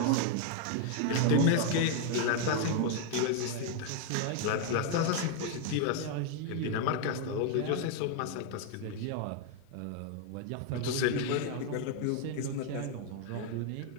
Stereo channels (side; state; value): both; different; correlation 0.00